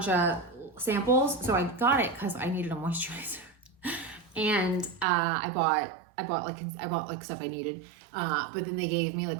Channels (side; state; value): left; drops out; at 5.1 s